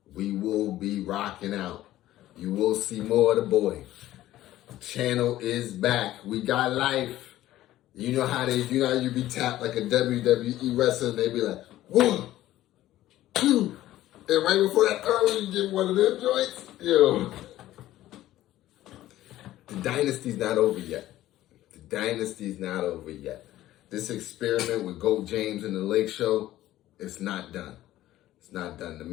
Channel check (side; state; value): right; quieter; 14.6 dB